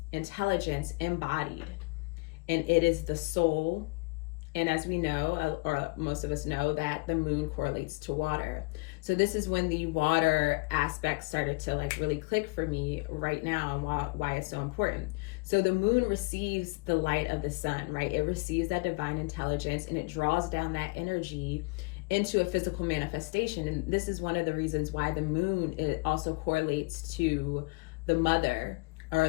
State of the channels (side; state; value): right; quieter; 29.1 dB